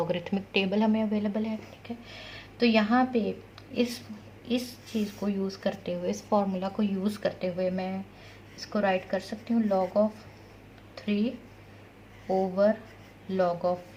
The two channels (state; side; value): identical; both; correlation 1.00